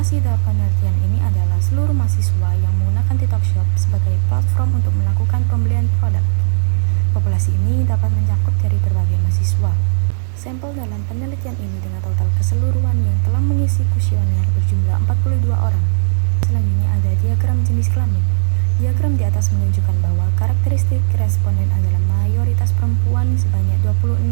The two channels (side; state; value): left; silent; 69 dB below the other